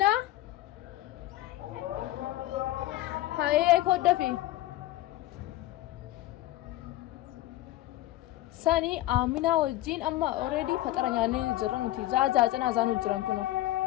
हाँ ये एक होता फिर सनी आमिना हो जीन अम्मा already फतरा याने जरन थी जा जना जानु जरन कुनो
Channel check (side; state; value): right; quieter; 16.0 dB